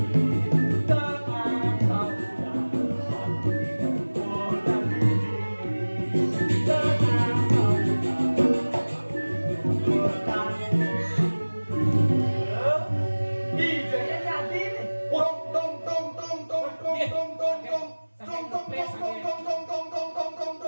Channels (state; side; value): inverted; both; correlation -1.00